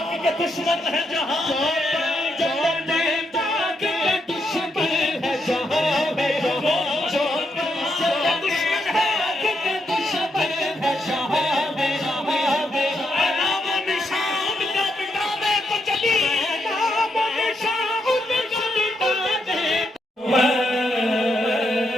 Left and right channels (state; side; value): normal; both; correlation 0.80